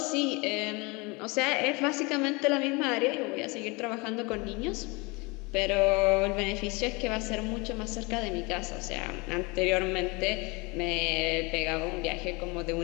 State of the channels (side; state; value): right; quieter; 27.1 dB